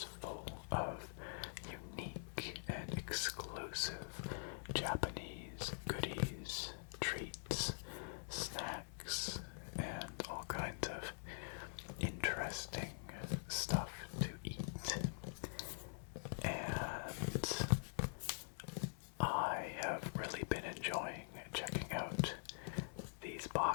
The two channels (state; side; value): silent; right; digital silence